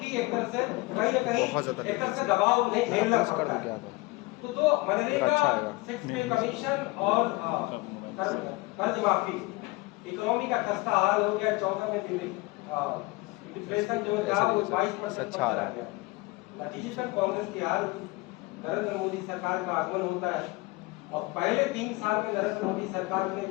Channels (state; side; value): quieter; right; 22.7 dB